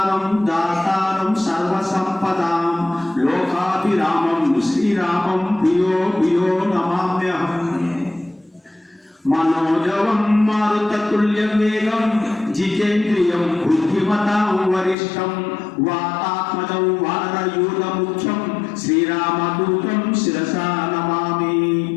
దాతారం సర్వసంపదాం లోకాభిరామం శ్రీరామం ప్రియో ప్రియో నమామ్యహం. మనోజవం మారుతతుల్య వేగం జితేంద్రియం బుద్ధిమతాం వరిష్టం వాతాత్మజం వానరయూధముఖ్యం శ్రీరామదూతం శిరసా నమామి.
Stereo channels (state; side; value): drops out; right; at 15.0 s